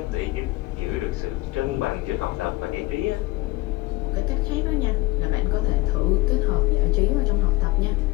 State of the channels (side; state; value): right; quieter; 20.7 dB